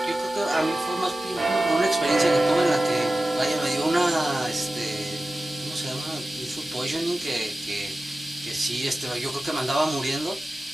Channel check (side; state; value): both; normal; correlation 0.95